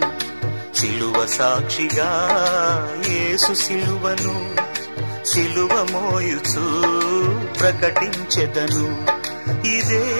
సిలువ సాక్షిగా యేసు సిలువను సిలువ మోయుచు ప్రకటించెదను. ఇదే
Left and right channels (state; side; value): inverted; both; correlation -1.00